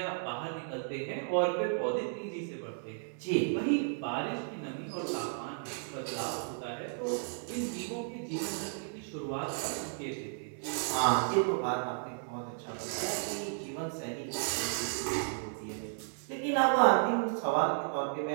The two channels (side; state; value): left; silent; digital silence